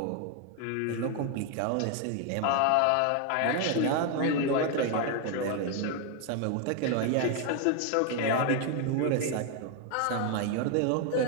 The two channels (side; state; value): both; different; correlation 0.01